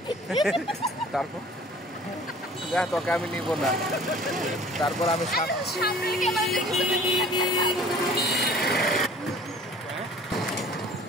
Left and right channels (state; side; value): normal; both; correlation 0.49